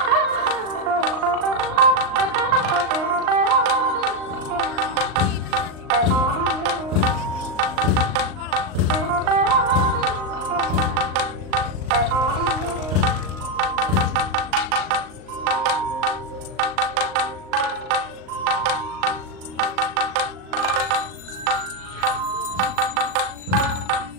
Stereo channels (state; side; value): late; left; 39 ms